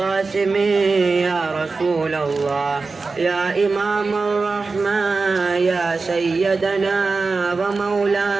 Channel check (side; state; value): left; quieter; 4.1 dB